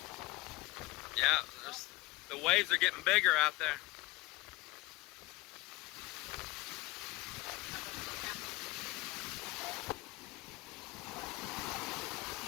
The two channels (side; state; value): right; quieter; 21.1 dB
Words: Yeah, the waves are getting bigger out there.